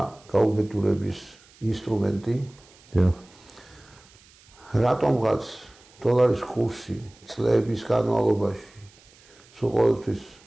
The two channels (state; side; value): noise; right; hiss, 27 dB below the sound